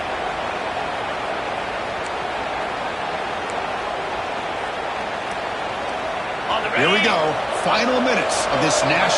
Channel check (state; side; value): identical; both; correlation 1.00